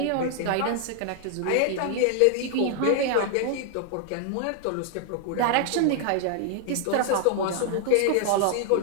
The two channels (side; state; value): both; different; correlation 0.00